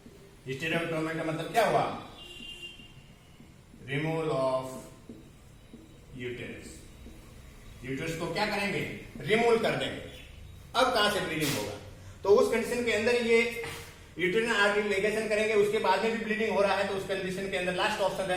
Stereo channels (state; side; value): identical; both; correlation 1.00